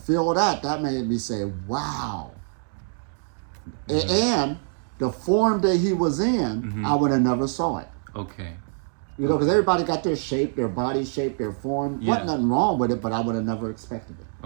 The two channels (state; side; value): silent; left; digital silence